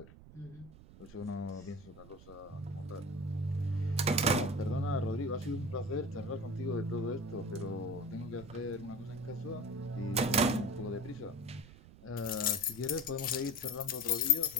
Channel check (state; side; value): noise; right; rumble, 19 dB below the sound